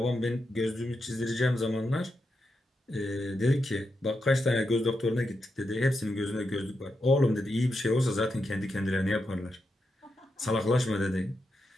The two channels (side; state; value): both; normal; correlation 0.86